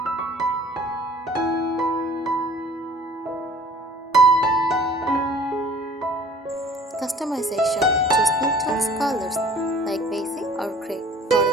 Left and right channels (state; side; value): normal; both; correlation 0.50